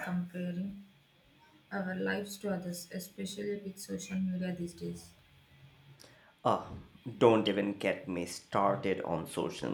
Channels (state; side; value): identical; both; correlation 1.00